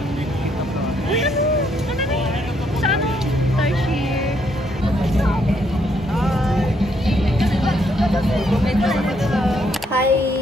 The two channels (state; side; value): normal; both; correlation 0.73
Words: Sa ano? Tarsier. Hi!